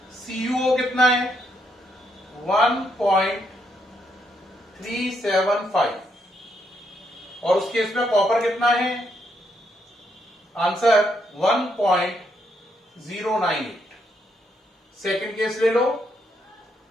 CuO कितना है? 1.375 और उस केस में कॉपर कितना है? आंसर 1.098। सेकंड केस ले लो।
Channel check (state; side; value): normal; both; correlation 0.76